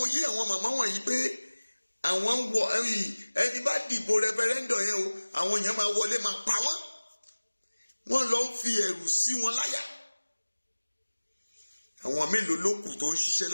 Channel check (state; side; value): inverted; both; correlation -1.00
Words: yé àwọn màmá wọ̀nyí pé àwọn ń wọ ẹni bá dìbò referendum yẹn o, àwọn èèyàn máa wọlé máa pa wọ́n. Wọ́n lọ ń fi ẹ̀rù sí wọn láyà. Àwọn mélòó ló kù tó ń ṣiṣẹ́